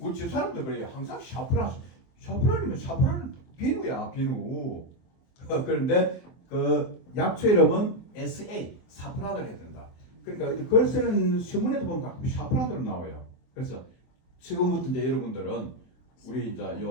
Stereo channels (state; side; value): late; right; 23 ms